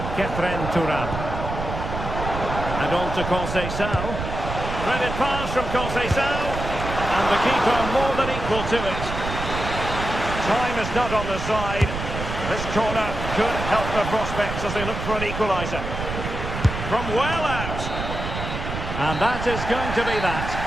Kefren Turam. And on to Conceição. Threaded pass from Conceição. And the keeper more than equal to it. Time is not on the side. This corner could help the prospects as they look for an equaliser. From well out. And that is going to be that.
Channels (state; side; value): noise; right; rumble, 6 dB below the sound